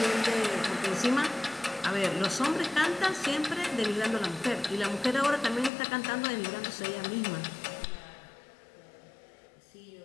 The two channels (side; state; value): right; drops out; at 5.7 s